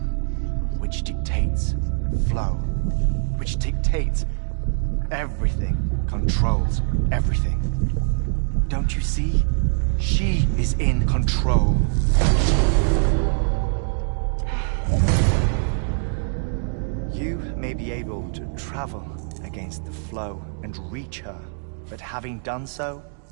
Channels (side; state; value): left; silent; digital silence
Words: which dictates flow, which dictates everything, controls everything. Don't you see? She is in control. You may be able to travel against the flow and reach her, but having done so,